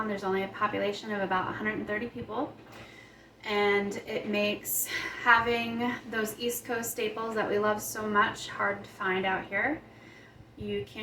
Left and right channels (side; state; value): both; identical; correlation 1.00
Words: There's only a population of about 130 people, and it makes having those East Coast staples that we love so much hard to find out here. You